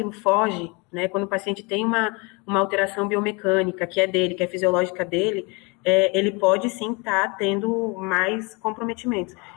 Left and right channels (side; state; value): right; quieter; 29.2 dB